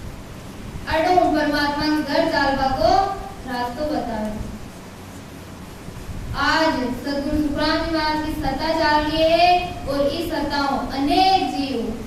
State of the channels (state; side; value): identical; both; correlation 1.00